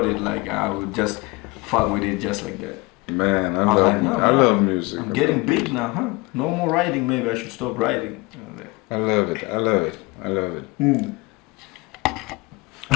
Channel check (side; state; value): right; quieter; 24.6 dB